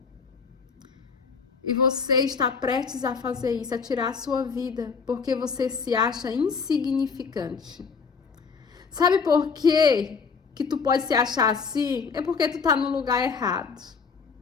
E você está prestes a fazer isso, a tirar a sua vida, porque você se acha insignificante. Sabe por quê que tu pode se achar assim? É porque tu tá no lugar errado.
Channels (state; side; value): quieter; right; 5.5 dB